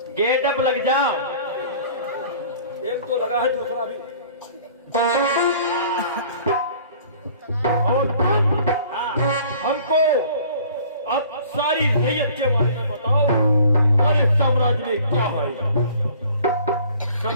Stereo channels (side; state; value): both; inverted; correlation -0.51